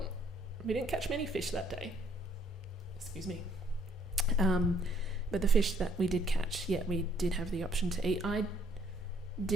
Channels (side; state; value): both; normal; correlation 0.65